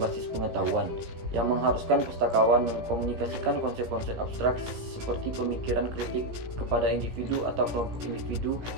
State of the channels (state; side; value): late; left; 17 ms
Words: pengetahuan, yang mengharuskan pustakawan mengkomunikasikan konsep-konsep abstrak seperti pemikiran kritik kepada individu atau kelompok individu